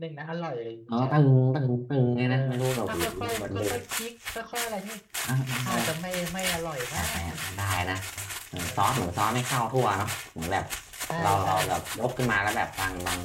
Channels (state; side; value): identical; both; correlation 1.00